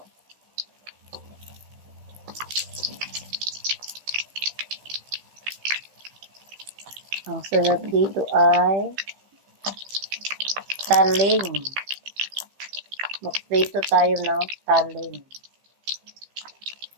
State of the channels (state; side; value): late; left; 15 ms